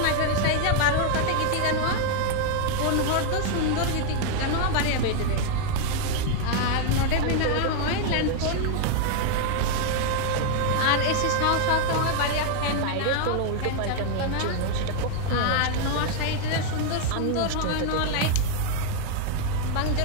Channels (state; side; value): different; both; correlation 0.00